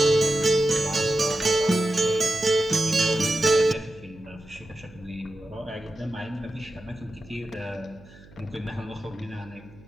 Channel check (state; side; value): noise; right; hum, 23 dB below the sound